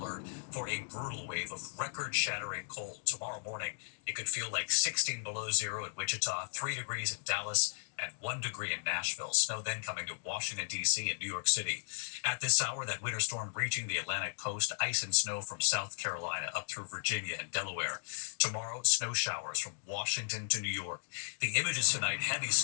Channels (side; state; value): right; silent; digital silence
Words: for a brutal wave of record-shattering cold. Tomorrow morning, it could feel like 16 below zero in Wichita, 3 degrees in Dallas, and 1 degree in Nashville. Snow then coming to Washington, D.C. and New York City. At this hour, that winter storm reaching the Atlantic coast, ice and snow from South Carolina up through Virginia and Delaware. Tomorrow, snow showers from Washington to New York. The images tonight, heavy